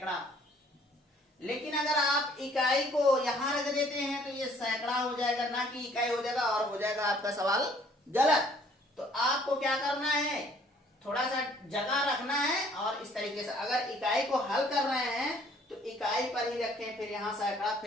लेकिन अगर आप इकाई को यहां रख देते हैं तो ये सैकड़ा हो जाएगा, ना कि इकाई हो जाएगा, और हो जाएगा आपका सवाल गलत। तो आपको क्या करना है? थोड़ा सा जगह रखना है और इस तरीके से अगर इकाई को हल कर रहे हैं तो इकाई पर ही रखें, फिर यहाँ सैकड़ा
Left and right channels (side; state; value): both; normal; correlation 0.59